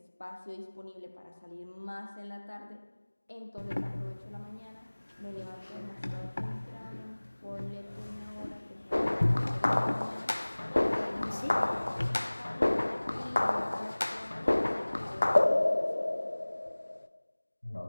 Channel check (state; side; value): inverted; both; correlation -1.00